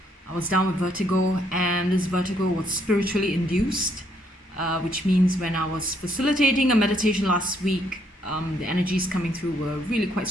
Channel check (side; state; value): both; normal; correlation 0.70